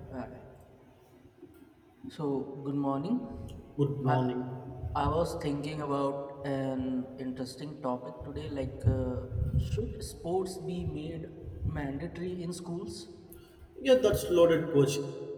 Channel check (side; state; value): both; identical; correlation 1.00